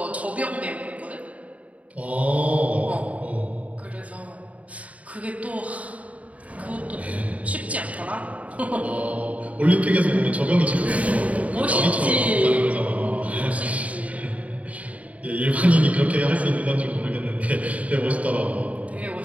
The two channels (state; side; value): late; left; 0.068 ms